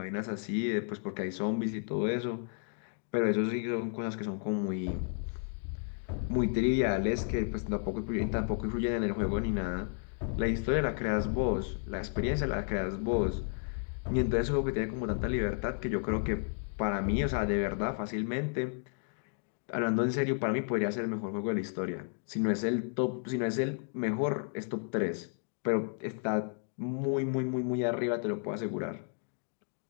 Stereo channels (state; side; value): silent; right; 56 dB below the other